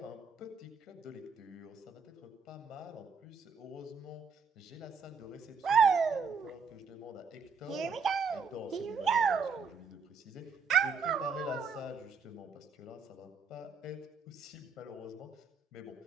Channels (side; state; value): left; quieter; 5.3 dB